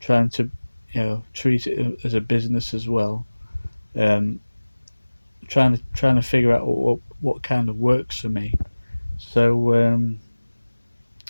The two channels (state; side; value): inverted; both; correlation -1.00